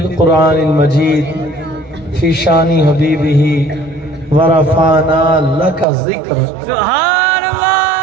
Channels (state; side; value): drops out; left; at 5.9 s